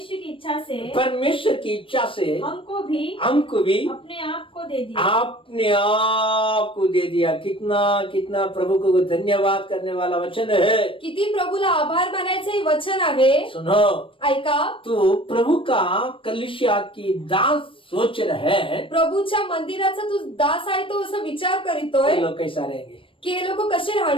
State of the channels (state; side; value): late; right; 0.25 ms